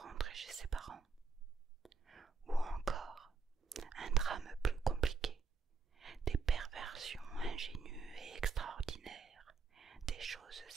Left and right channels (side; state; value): left; quieter; 4.9 dB